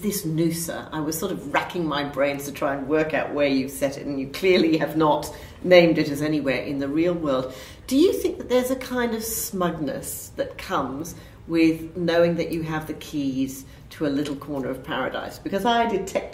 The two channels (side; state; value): both; identical; correlation 1.00